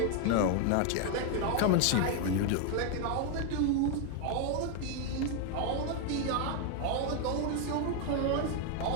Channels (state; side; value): different; both; correlation 0.00